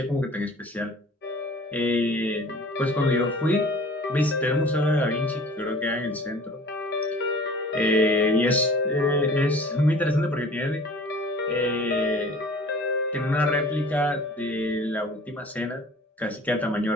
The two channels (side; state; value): both; normal; correlation 0.46